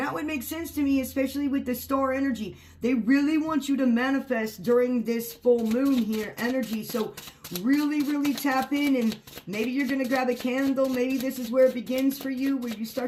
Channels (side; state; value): both; identical; correlation 1.00